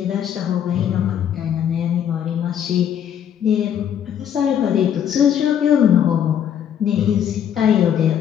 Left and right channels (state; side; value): quieter; right; 9.2 dB